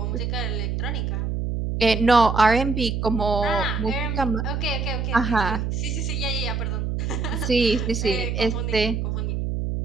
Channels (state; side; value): noise; right; hum, 1 dB below the sound